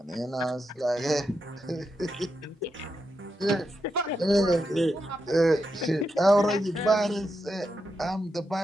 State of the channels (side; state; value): both; normal; correlation 0.85